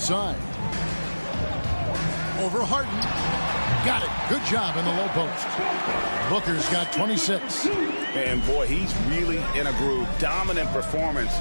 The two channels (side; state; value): both; inverted; correlation -1.00